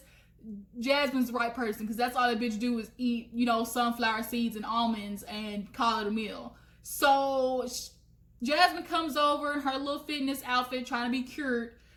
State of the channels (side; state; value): both; identical; correlation 1.00